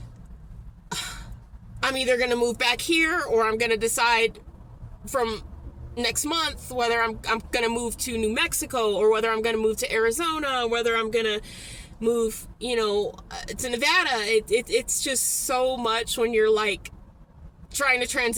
I'm either going to move back here, or I'm going to decide from next month whether I'm going to move to New Mexico, or whether I'm going to move to Arizona, whether I'm going to move, you know, to Nevada. It's just so much when you're like trying to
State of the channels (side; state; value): both; identical; correlation 1.00